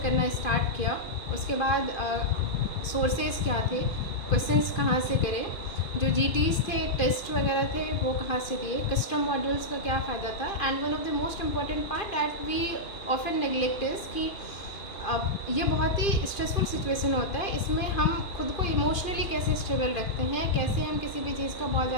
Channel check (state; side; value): late; right; 2.5 ms